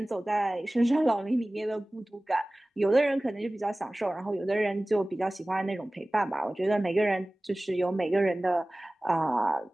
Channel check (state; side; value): normal; both; correlation 0.98